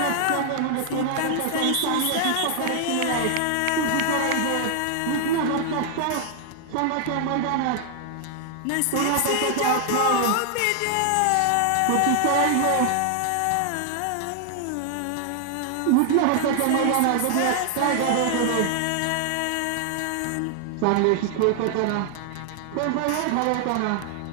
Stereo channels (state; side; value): different; both; correlation 0.00